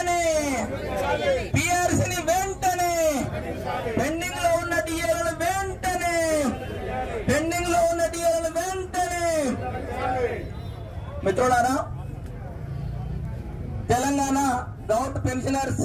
పిఆర్సీని వెంటనే, పెండింగ్ లో ఉన్న డిఏలను వెంటనే, పెండింగ్ లో ఉన్న డిఏలను వెంటనే. మిత్రులారా, తెలంగాణ గౌట్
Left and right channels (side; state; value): both; identical; correlation 1.00